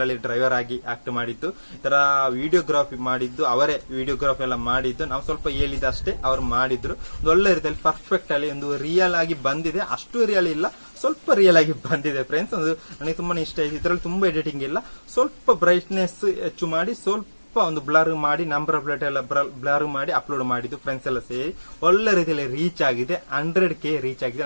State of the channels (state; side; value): inverted; both; correlation -1.00